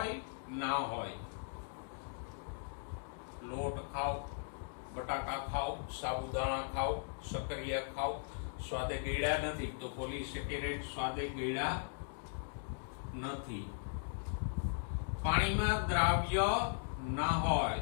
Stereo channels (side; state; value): right; silent; digital silence